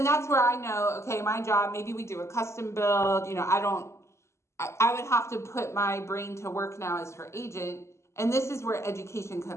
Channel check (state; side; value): late; right; 0.13 ms